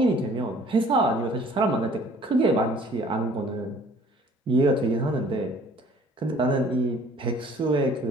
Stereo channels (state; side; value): normal; both; correlation 0.54